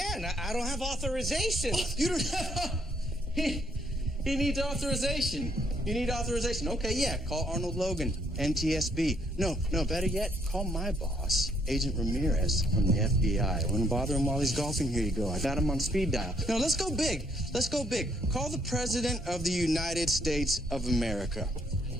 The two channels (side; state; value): both; normal; correlation 0.70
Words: I don't have authorization. Oh, you don't have... He needs authorization. You need authorization. Okay, yeah. Call Arnold Logan, NTSB. No, better yet, call my boss, Agent Ramirez from the FBI. I wouldn't bother him while he's golfing. Here you go. I got him on speed dial. No, let's go big. Let's go big. Call the President of the United States of America.